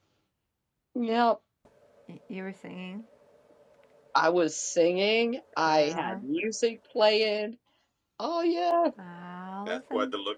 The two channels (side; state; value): both; identical; correlation 1.00